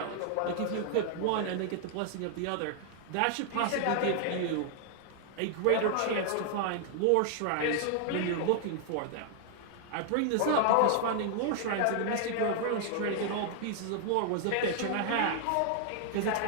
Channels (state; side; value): different; both; correlation 0.00